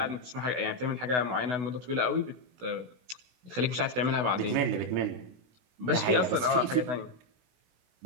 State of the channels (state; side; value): late; left; 16 ms